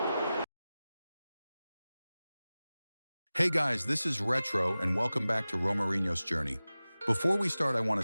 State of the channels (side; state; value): both; inverted; correlation -0.96